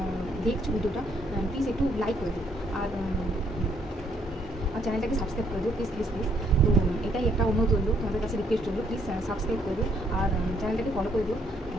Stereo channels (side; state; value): both; normal; correlation 0.69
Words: দেখছো ভিডিওটা প্লিজ একটু লাইক করে দিও, আর চ্যানেলটাকে সাবস্ক্রাইব করে দিও প্লিজ প্লিজ প্লিজ। তো এটাই একটা অনুরোধ রইল, তোমাদের কাছে রিকোয়েস্ট রইল, প্লিজ সাবস্ক্রাইব করে দিও আর চ্যানেলটাকে ফলো করে দিও।